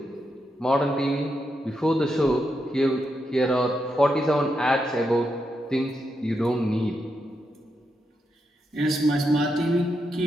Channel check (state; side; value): normal; both; correlation 0.84